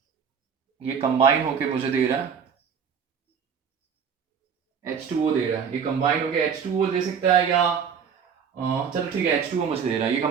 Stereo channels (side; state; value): left; quieter; 7.0 dB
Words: ये कंबाइन होके मुझे दे रहा है H2O दे रहा है, ये कंबाइन होके H2O दे सकता है, या चलो ठीक है H2O मुझे दे रहा है, ये